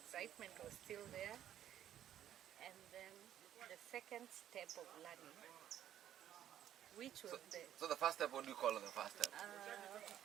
was still there. And then the second step of learning, which was So the first step, what do you call it, the first step?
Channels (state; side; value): quieter; left; 11.1 dB